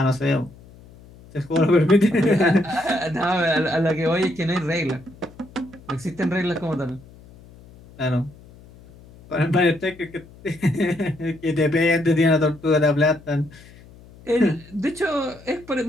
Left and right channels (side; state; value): left; noise; hum, 22 dB below the sound